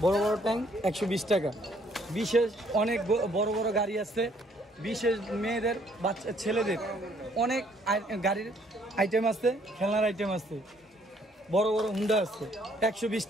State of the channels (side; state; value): both; normal; correlation 0.64